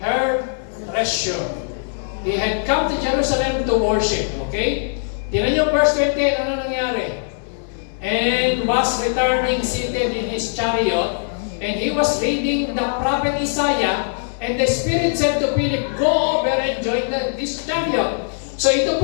her treasure. He had come to Jerusalem to worship. Okay? Tingnan niyo verse 28, ano nangyari? "And was returning seated in his chariot, and he was reading the prophet Isaiah, and the Spirit said to Philip, Go over and join this chariot." So ito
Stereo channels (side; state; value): right; silent; digital silence